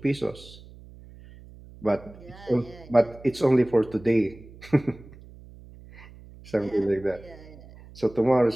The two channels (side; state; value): right; noise; hum, 20 dB below the sound